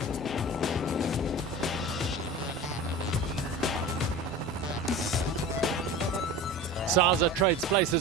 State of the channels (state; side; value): normal; both; correlation 0.34